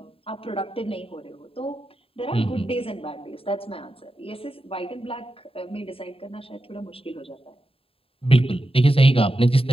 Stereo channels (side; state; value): right; late; 0.27 ms